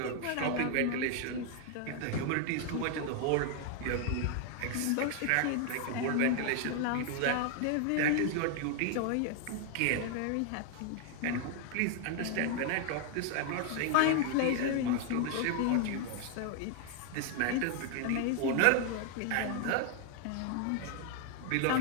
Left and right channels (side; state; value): both; different; correlation 0.00